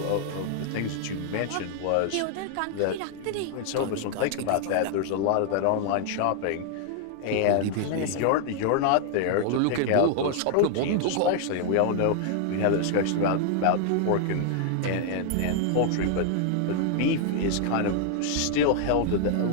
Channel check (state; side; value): different; both; correlation 0.00